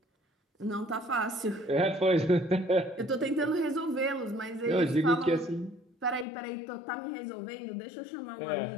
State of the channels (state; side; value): drops out; right; at 6.2 s